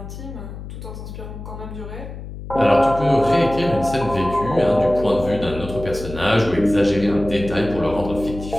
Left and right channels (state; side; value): noise; left; hum, 11 dB below the sound